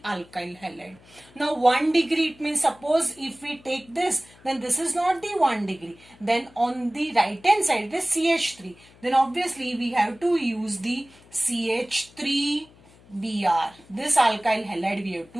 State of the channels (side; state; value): left; noise; hum, 26 dB below the sound